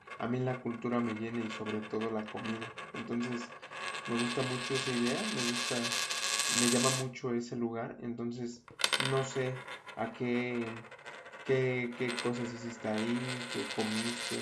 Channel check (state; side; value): identical; both; correlation 1.00